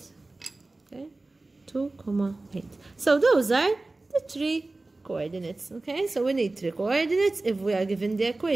Okay? 2, 8. So those are the 3 coordinates. Okay? So we need 3 coordinates. If we are given the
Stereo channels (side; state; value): left; quieter; 3.1 dB